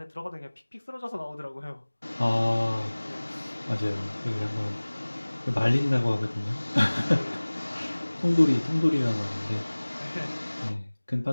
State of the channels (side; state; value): both; inverted; correlation -1.00